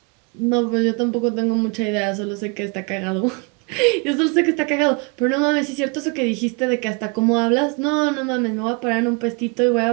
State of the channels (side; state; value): left; quieter; 31.2 dB